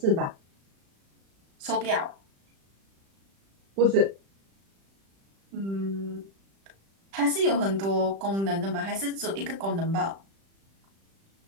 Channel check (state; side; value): late; left; 36 ms